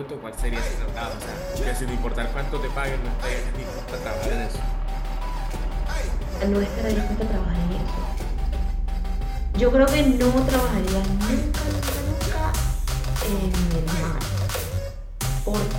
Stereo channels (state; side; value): identical; both; correlation 1.00